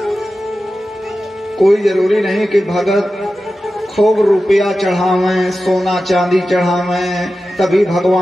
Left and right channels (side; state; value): both; normal; correlation 0.93